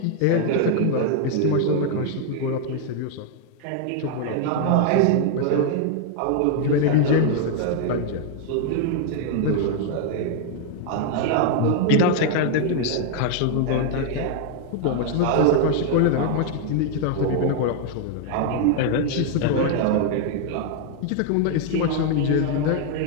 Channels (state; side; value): different; both; correlation 0.00